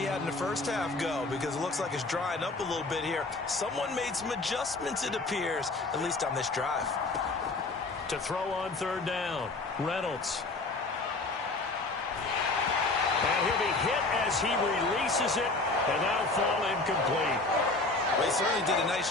had in the first half go? Because it looks like it's drying up a little bit here. Someone made some adjustments, it appears, at least on this drive. To throw on 3rd down, Reynolds. And he'll be hit as he releases it, and that'll fall incomplete. Well, he certainly did a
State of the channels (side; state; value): right; quieter; 3.3 dB